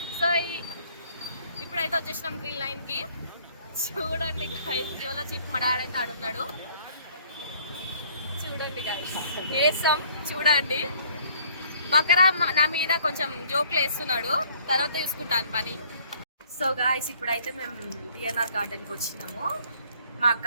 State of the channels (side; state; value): both; inverted; correlation -0.59